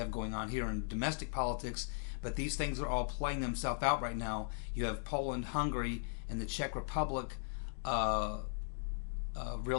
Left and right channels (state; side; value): silent; right; digital silence